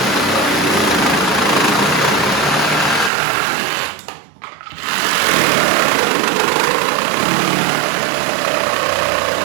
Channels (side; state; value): left; drops out; at 3.1 s